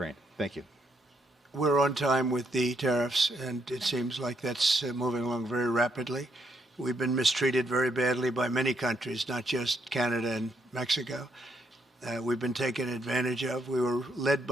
Thank you. We're on time with the tariffs, and it seems like that's moving along very rapidly. We've been mistreated very badly by many countries, not just Canada and Mexico. We've been taken advantage of. We were led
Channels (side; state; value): both; normal; correlation 0.75